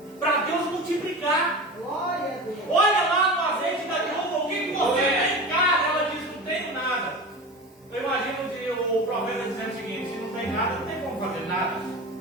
para Deus multiplicar. Glória a Deus. Olha lá no azeite da viúva, o que você tem em casa? Ela diz, não tenho nada. Eu imagino o profeta dizendo o seguinte: se não tem nada, não tem como fazer nada.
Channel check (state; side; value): normal; both; correlation 0.30